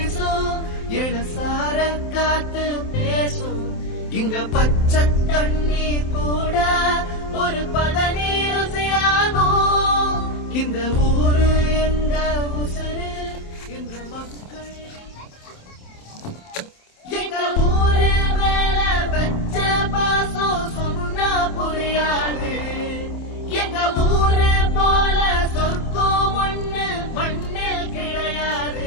இளசார காத்து பேசும். இங்க பச்சை தண்ணி கூட ஒரு பதனி ருசியாகும். இந்த ஊரு எங்க உசுரு இந்த மக்கள். எங்க ஊரு மேல வச்ச பாசம் சொன்னா புரியாது. எங்க ஊரு போல சொர்க்கம் ஒண்ணு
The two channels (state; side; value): late; right; 27 ms